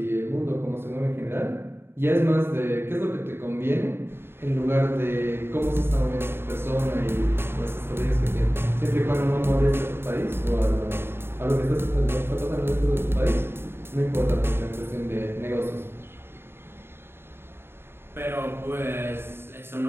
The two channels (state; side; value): late; left; 0.11 ms